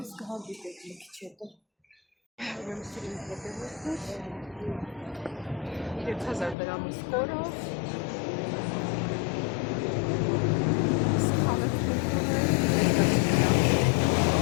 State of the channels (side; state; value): right; drops out; at 6.6 s